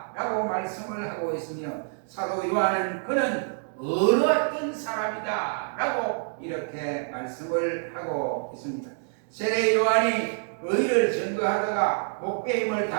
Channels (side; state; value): left; silent; digital silence